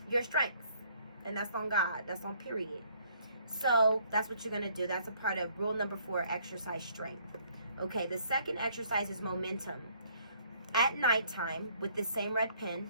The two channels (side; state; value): both; inverted; correlation -0.63